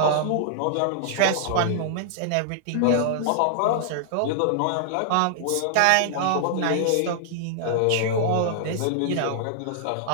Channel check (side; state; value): both; different; correlation -0.01